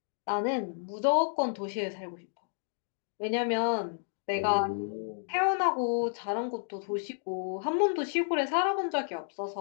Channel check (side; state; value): right; silent; digital silence